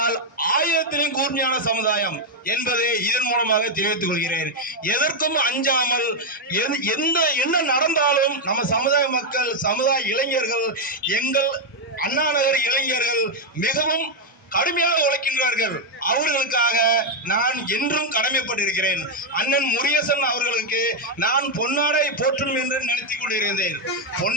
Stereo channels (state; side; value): normal; both; correlation 0.01